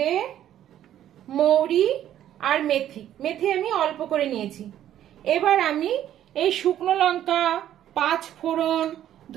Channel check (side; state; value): left; quieter; 11.5 dB